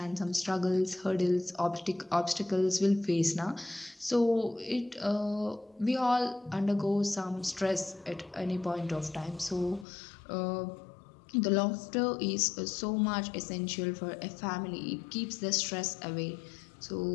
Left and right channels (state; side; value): drops out; right; at 9.9 s